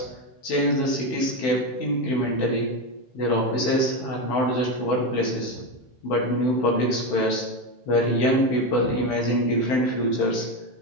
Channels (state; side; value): late; right; 16 ms